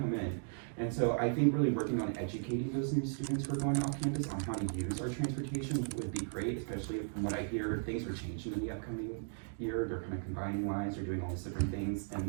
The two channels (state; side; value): silent; left; digital silence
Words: in. And so I think really working on educating those new students who are going off campus on how to use our transportation would be great, especially from what I hear, things are changing in the upcoming year. They're kind of combining lines, they're doing all these different things.